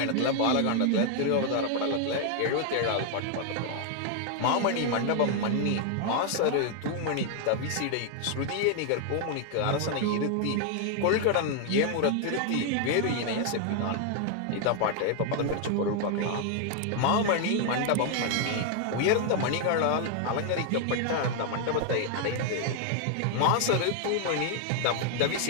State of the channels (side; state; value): both; different; correlation 0.00